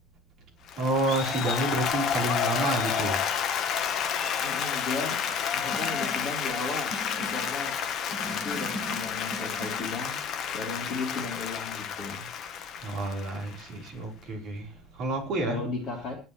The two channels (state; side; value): quieter; right; 3.4 dB